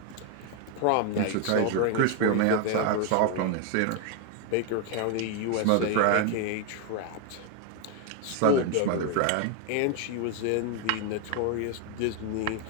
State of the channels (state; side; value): different; both; correlation 0.01